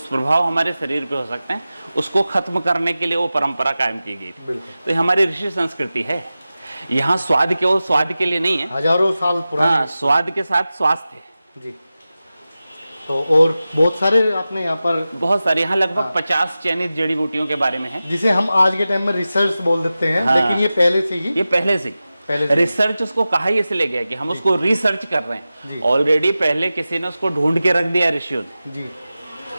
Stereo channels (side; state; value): both; inverted; correlation -0.95